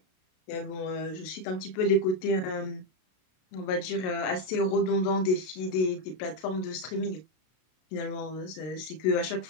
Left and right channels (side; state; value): right; late; 32 ms